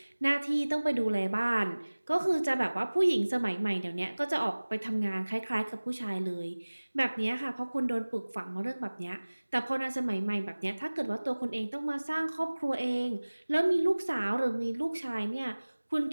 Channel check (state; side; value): inverted; both; correlation -1.00